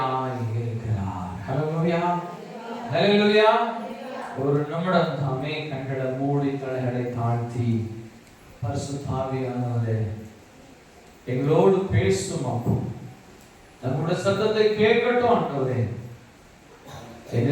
இருக்கிறார். ஹல்லேலூயா, ஹல்லேலூயா. ஒரு நிமிடம் தாமே கண்களை மூடி தலைகளை தாழ்த்தி பரிசுத்த ஆவியானவரே எங்களோடு பேசும் அப்போ நம்முடைய சத்தத்தை கேட்கட்டும் ஆண்டவரே.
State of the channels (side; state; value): both; identical; correlation 1.00